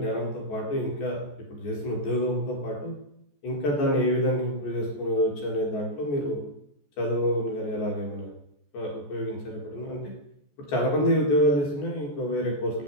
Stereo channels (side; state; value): right; late; 14 ms